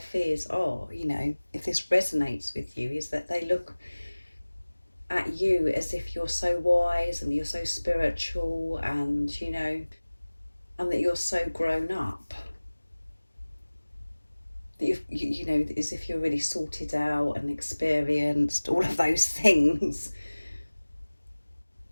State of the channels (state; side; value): inverted; both; correlation -1.00